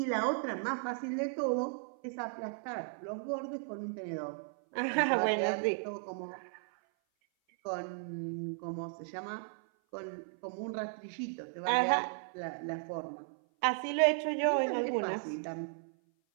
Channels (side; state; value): left; silent; 54 dB below the other